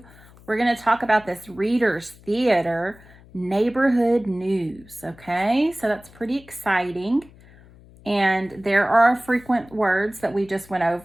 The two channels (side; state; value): left; noise; hum, 24 dB below the sound